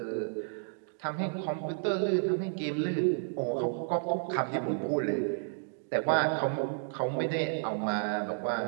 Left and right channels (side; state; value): left; silent; digital silence